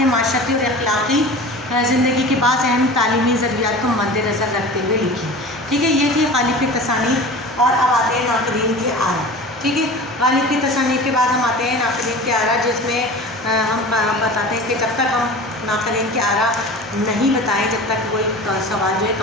معاشرتی اور اخلاقی زندگی کے بعض اہم تعلیمی ضروریات کو مد نظر رکھتے ہوئے لکھی. ٹھیک ہے. یہ تھی غالب کی تصانیف. اور اب آتے ہیں ناقدین کی آرا. ٹھیک ہے. غالب کی تصانیف کے بعد ہم آتے ہیں ناقدین کی آرا جس میں ہم بتاتے ہیں کہ جب تک ہم ناقدین کی آرا نہیں بتائیں جب تک کوئی سوال جو ہے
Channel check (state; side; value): normal; both; correlation 0.36